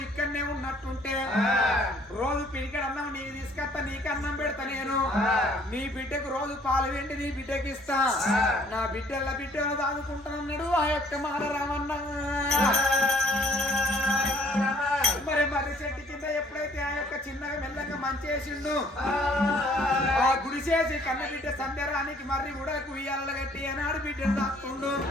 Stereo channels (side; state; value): both; normal; correlation 0.60